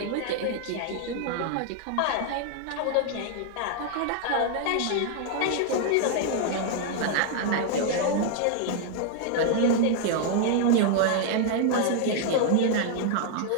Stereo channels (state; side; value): different; both; correlation 0.00